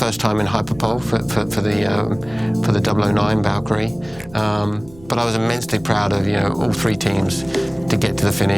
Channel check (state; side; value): noise; right; rumble, 22 dB below the sound